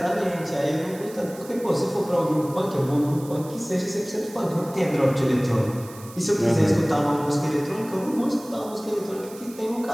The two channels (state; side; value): noise; right; hiss, 19 dB below the sound